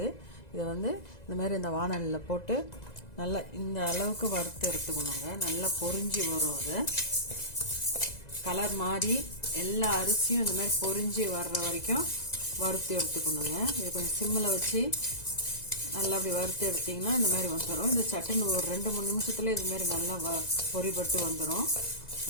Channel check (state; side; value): late; right; 2.0 ms